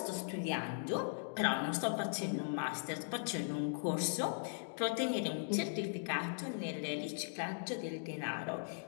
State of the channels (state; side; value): silent; right; digital silence